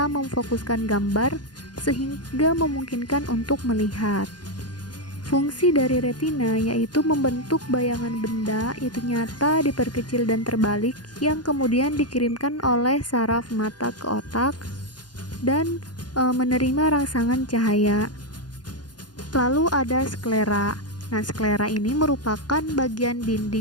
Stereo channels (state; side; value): late; right; 0.70 ms